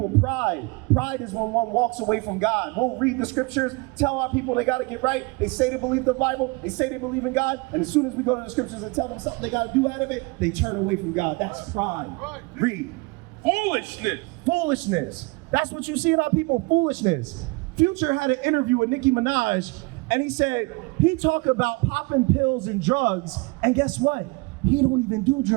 pride. Pride is when one walks away from God. We'll read the scriptures, tell our people they got to get right. They say they believe the Bible, they say they believe in God, and as soon as we go to the scriptures and tell them something they got to do out of it, they turn away from God. That's pride. Right. Read. Foolishness. That's what you see in our people, foolishness. Future had an interview with Nicki Minaj, and he said he talked about popping pills and drugs, and guess what? He don't even do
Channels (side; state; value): left; quieter; 27.1 dB